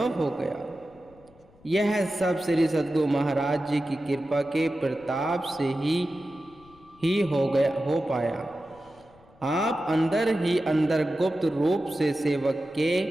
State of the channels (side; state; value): left; noise; rumble, 28 dB below the sound